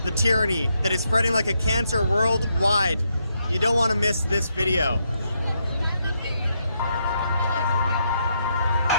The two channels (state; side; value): inverted; both; correlation -0.79